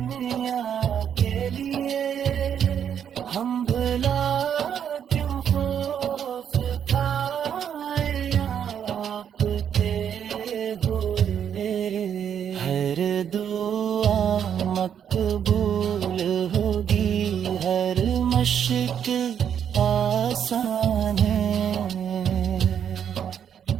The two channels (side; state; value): left; quieter; 8.6 dB